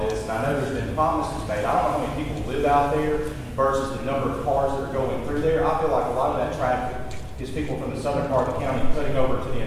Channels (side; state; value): both; identical; correlation 1.00